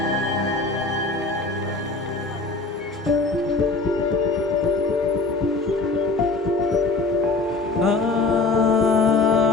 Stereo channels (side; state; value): right; quieter; 3.6 dB